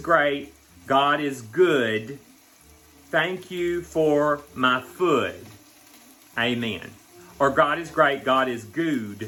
God is good, thank you for my food. Amen. Or God is great, God is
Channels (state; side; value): identical; both; correlation 1.00